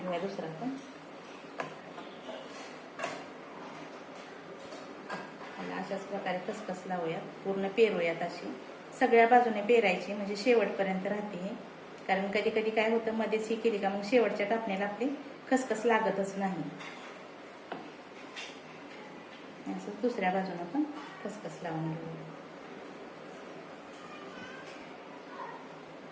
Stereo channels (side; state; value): both; identical; correlation 1.00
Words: दुसरा पण. अशाच प्रकारे खसखस लावूयात, पूर्ण पेरूयात. अशी सगळ्या बाजूने पेरायची, म्हणजे शेवटपर्यंत राहते हे. कारण कधी कधी काय होतं, मध्येच ही केली का मग शेवटच्या कापण्याला आपली खसखस लागतच नाही. असं दुसऱ्या बाजूने पण खसखस लावून घेऊया.